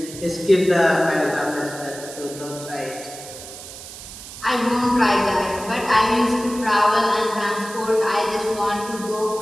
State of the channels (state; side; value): noise; right; hiss, 13 dB below the sound